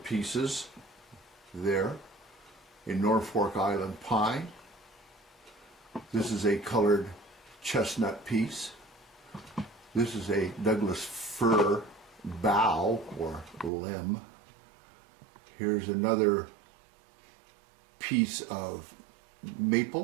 pieces there, a Norfolk Island pine. This is a colored chestnut piece. This is a Douglas fir bough or limb. Here's another piece of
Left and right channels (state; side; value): drops out; left; at 13.7 s